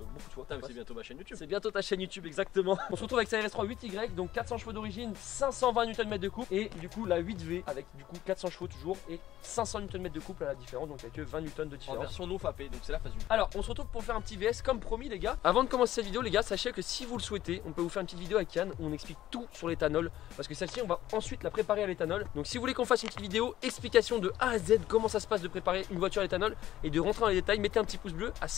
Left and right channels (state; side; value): quieter; right; 13.6 dB